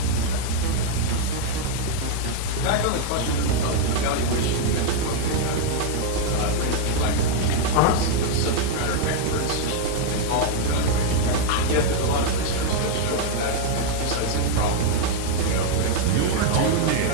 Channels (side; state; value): both; different; correlation 0.00